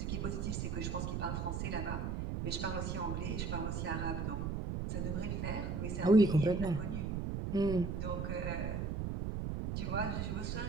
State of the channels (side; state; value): right; noise; rumble, 2 dB below the sound